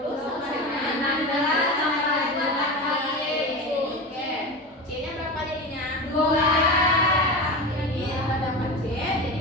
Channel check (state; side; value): normal; both; correlation 0.25